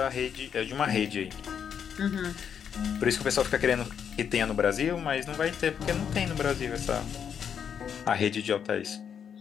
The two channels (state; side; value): quieter; right; 7.8 dB